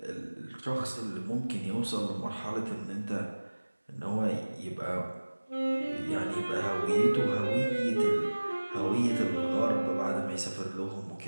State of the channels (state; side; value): inverted; both; correlation -1.00